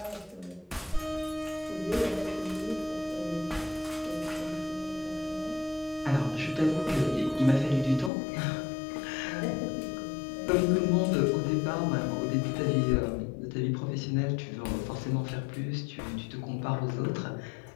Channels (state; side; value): drops out; right; at 8.1 s